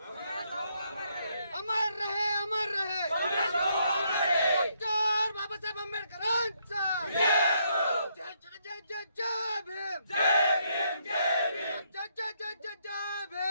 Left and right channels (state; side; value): inverted; both; correlation -0.74